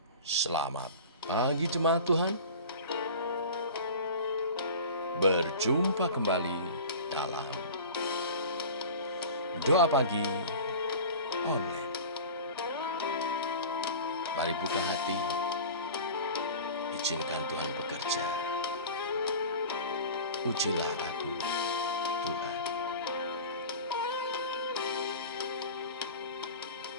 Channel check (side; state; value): both; inverted; correlation -0.36